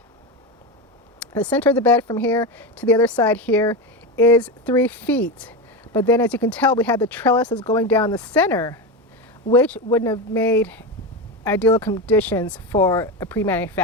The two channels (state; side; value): normal; both; correlation 0.17